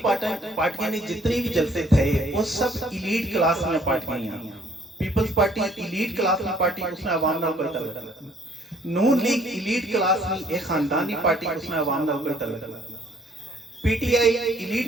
پارٹیاں نے جتنی بھی جلسے تھے وہ سب ایلیٹ کلاس میں پارٹیاں ہیں پیپلز پارٹی ایلیٹ کلاس میں پارٹی اس میں عوام نال کوئی تعلق نہیں نون لیگ ایلیٹ کلاس میں ایک خاندانی پارٹی اس میں عوام نال کوئی تعلق نہیں P T I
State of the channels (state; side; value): normal; both; correlation 0.61